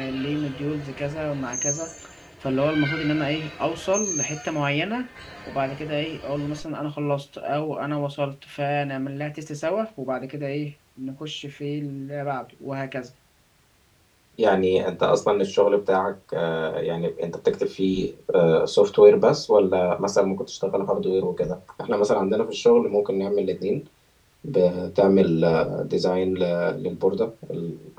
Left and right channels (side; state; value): both; identical; correlation 1.00